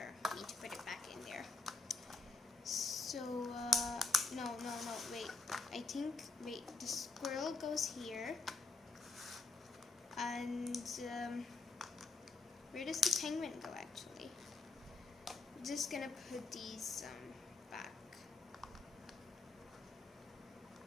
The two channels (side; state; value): right; quieter; 3.5 dB